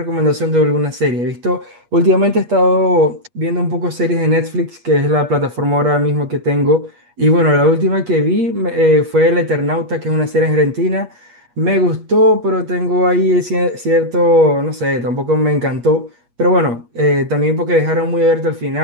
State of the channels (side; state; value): left; late; 8.4 ms